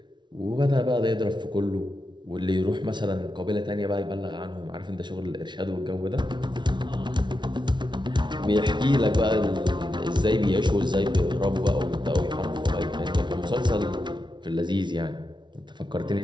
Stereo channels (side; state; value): left; late; 0.22 ms